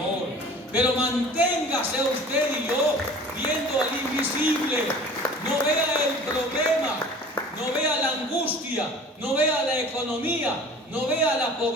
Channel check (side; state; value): both; normal; correlation 0.44